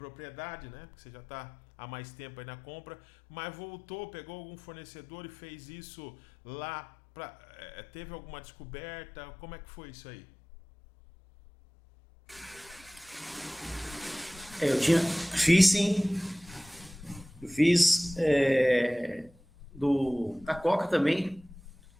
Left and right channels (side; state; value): both; normal; correlation 0.97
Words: né? Porque você já tá há mais tempo aí na compra, mas voltou, pegou algum fornecedor e fez isso lá. Teve alguma descoberta? Como é que foi isso aí? Fiz sim, eu fiz da Coca também,